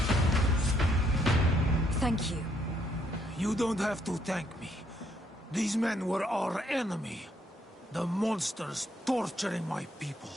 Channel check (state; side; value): normal; both; correlation 0.71